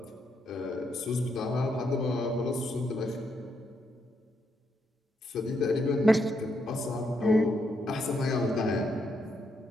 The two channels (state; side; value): normal; both; correlation 0.78